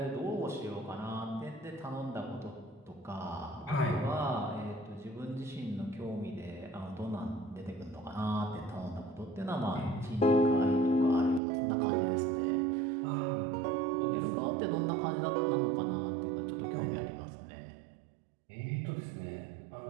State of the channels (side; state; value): left; drops out; at 11.4 s